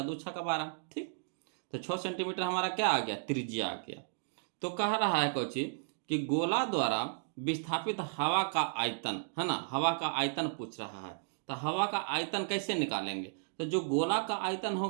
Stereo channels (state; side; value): silent; left; digital silence